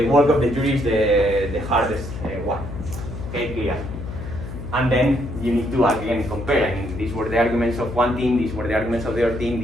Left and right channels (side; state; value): left; noise; hum, 9 dB below the sound